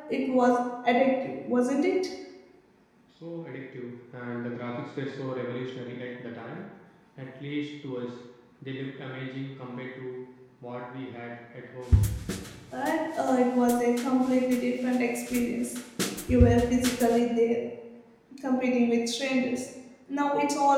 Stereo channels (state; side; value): identical; both; correlation 1.00